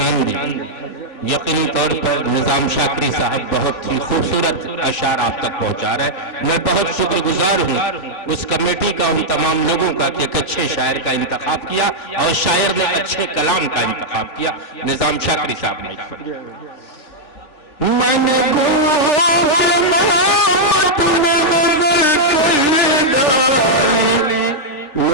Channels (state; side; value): late; right; 3.4 ms